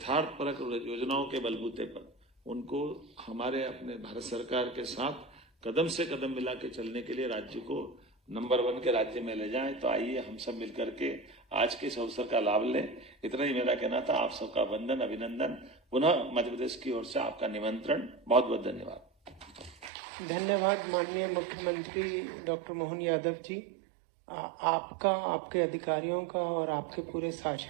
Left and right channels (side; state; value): left; drops out; at 19.9 s